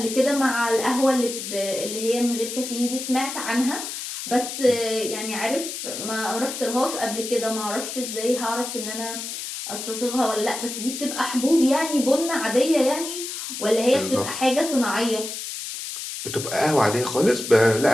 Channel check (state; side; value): noise; left; hiss, 7 dB below the sound